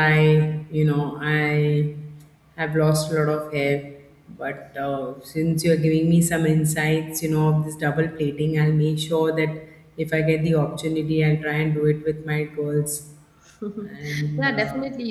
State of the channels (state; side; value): identical; both; correlation 1.00